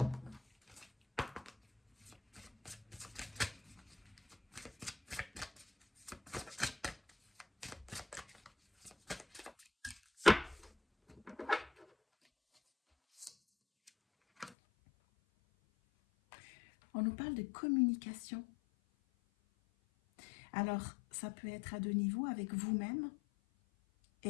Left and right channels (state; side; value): drops out; right; at 14.6 s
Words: On nous parle de communication. Alors, ça peut être à deux niveaux, avec vous-même.